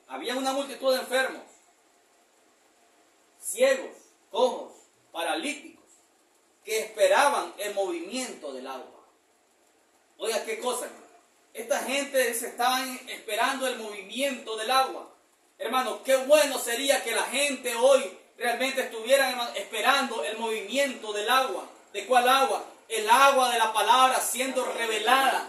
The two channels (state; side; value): identical; both; correlation 1.00